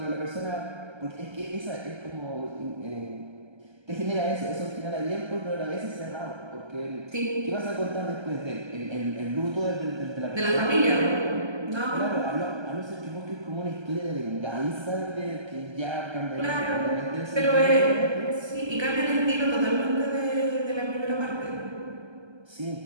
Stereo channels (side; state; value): left; late; 1.3 ms